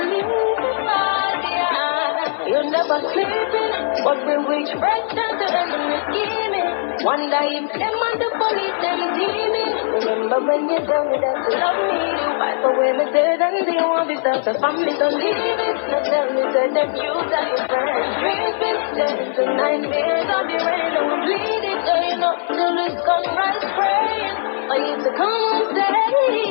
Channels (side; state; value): right; silent; 64 dB below the other